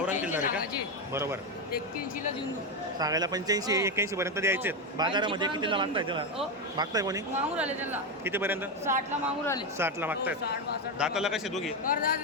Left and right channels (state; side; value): normal; both; correlation 0.10